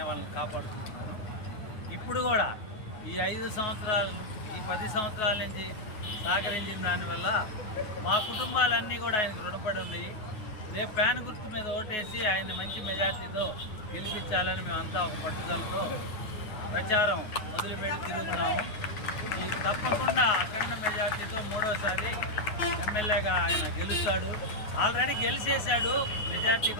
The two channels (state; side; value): late; right; 9.4 ms